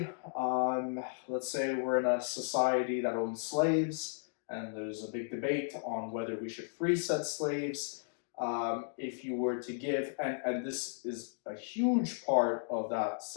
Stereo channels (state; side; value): silent; right; digital silence